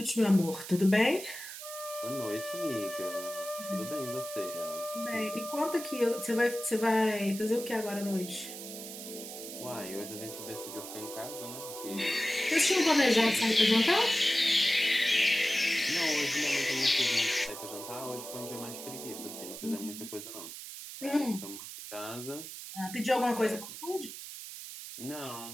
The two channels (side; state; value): right; noise; hiss, 10 dB below the sound